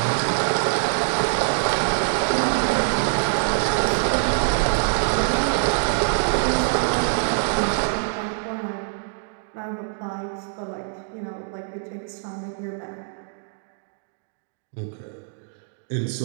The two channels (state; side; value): silent; left; digital silence